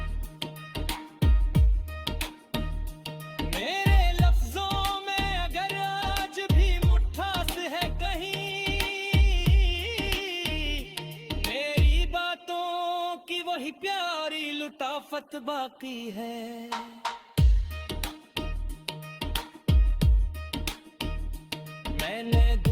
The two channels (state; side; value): identical; both; correlation 1.00